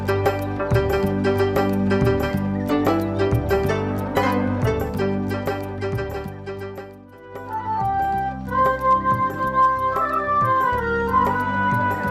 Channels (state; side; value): identical; both; correlation 1.00